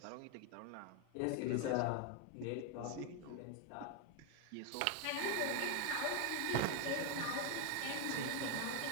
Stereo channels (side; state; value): both; different; correlation 0.01